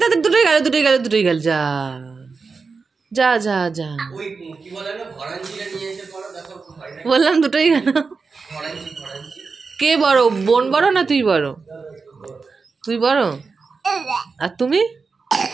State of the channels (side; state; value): left; quieter; 4.7 dB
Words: তাড়াতাড়ি, দুটোই গেল। যা যা যা যা, ওই কি বলে না, ভরাঞ্চিটা নিয়ে এসে পড়ো, দেখো হয় না। বললাম দুটোই গেল। ভরাঞ্চি। কে বড়, বোন বড় না তুই বড়? তুই বড়। আর তুমি?